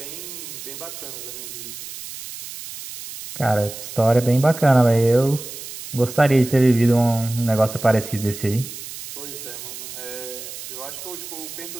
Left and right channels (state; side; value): noise; right; hiss, 11 dB below the sound